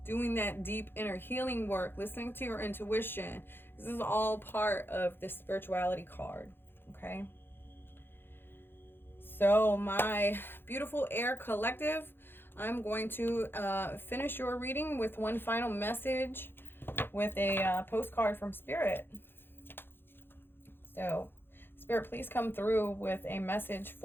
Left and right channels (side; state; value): right; late; 0.10 ms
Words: doing that deep inner healing work, listening to your intuition. This is all part of the spirituality card, okay? So my beautiful air collective, I'm going to finish your reading with one final message with a postcard from Spirit. So Spirit, please come through with a message